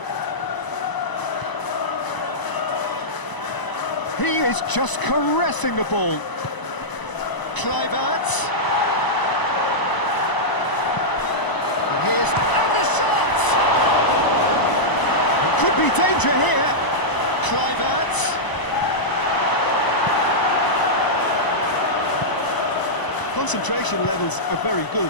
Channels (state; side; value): late; right; 1.0 ms